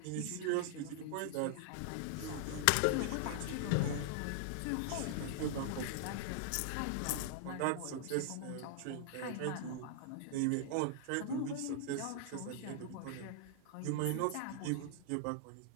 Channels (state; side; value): different; both; correlation -0.01